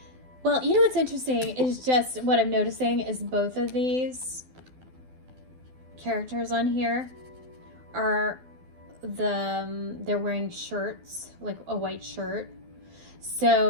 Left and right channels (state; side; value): late; left; 12 ms